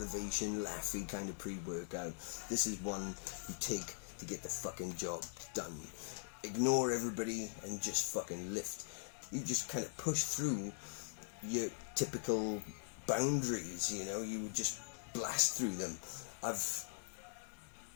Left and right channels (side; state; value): right; silent; digital silence